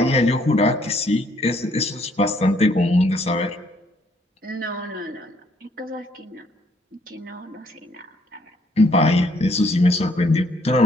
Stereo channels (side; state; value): both; normal; correlation 0.67